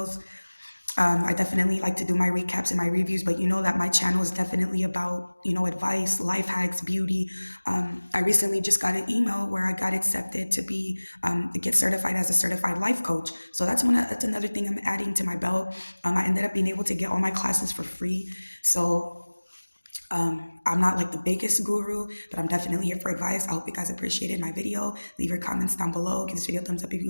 I definitely like to do my recaps and my reviews, but that my channel is definitely about, advice, life hacks, beauty. I recently just got an email where I got accepted to get certified as a certified life coach. So that's another thing I'm adding to my belt. I ended up being able to get all my classes for free. So I'm not like the biggest guru, but I'm definitely here for advice. I hope you guys appreciated my video. Leave your comments down below. Give this video a thumbs up if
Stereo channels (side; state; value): both; inverted; correlation -1.00